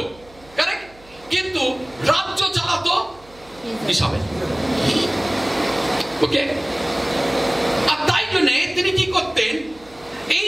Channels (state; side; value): noise; right; hum, 25 dB below the sound